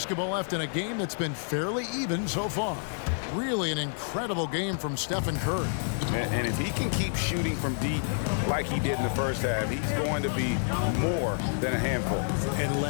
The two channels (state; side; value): silent; right; digital silence